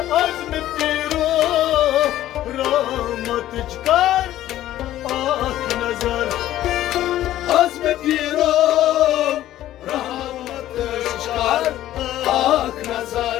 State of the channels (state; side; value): quieter; right; 13.5 dB